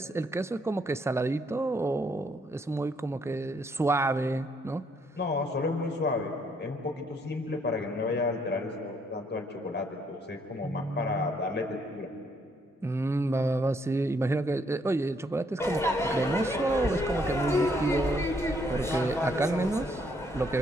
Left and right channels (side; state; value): both; normal; correlation 0.70